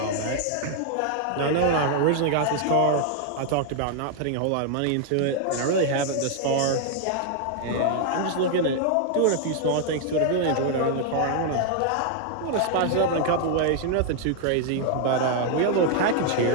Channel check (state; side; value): different; both; correlation 0.00